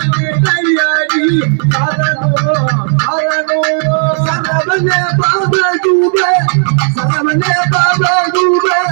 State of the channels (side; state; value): left; silent; digital silence